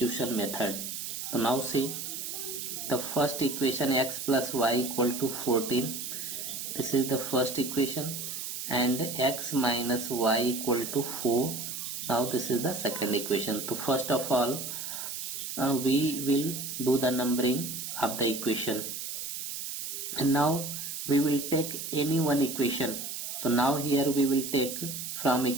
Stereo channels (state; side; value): noise; right; hiss, 6 dB below the sound